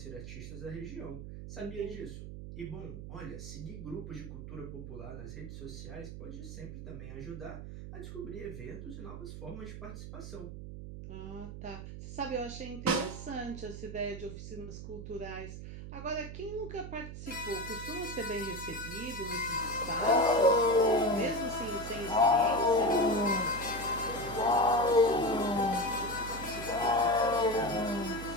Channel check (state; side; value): noise; right; hum, 9 dB below the sound